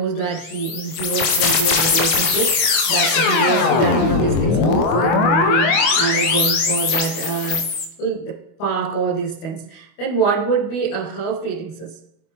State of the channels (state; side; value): late; right; 25 ms